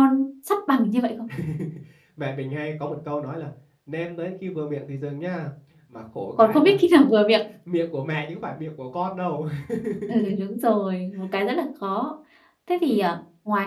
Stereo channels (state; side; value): identical; both; correlation 1.00